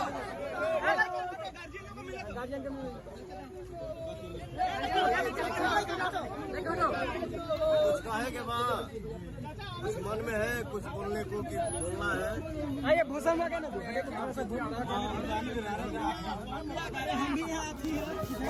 कुछ कहे के बाद कुछ मन में है, कुछ बोलने को कि बोलना है। ये भूषण में क्या ना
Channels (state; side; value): identical; both; correlation 1.00